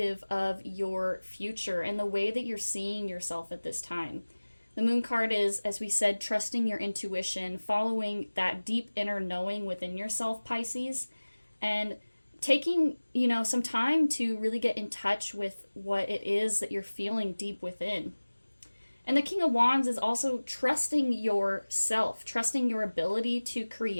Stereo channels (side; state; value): both; inverted; correlation -1.00